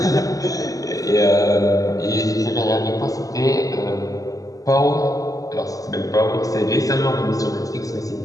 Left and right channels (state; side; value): late; right; 0.17 ms